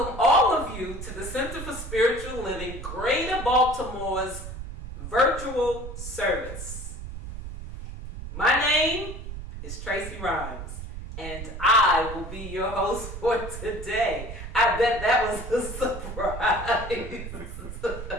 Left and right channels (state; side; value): noise; right; rumble, 9 dB below the sound